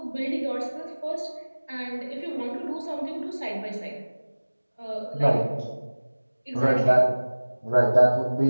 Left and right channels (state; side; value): inverted; both; correlation -1.00